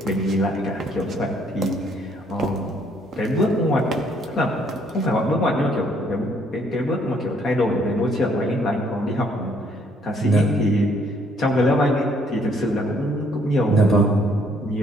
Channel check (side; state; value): both; normal; correlation 0.66